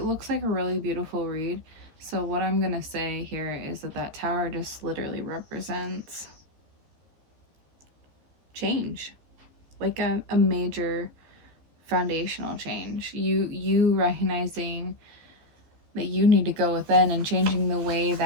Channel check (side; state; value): left; late; 14 ms